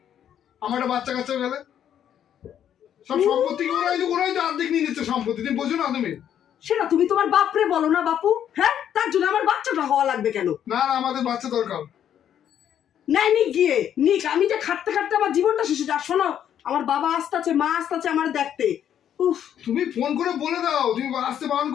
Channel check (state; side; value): quieter; right; 9.8 dB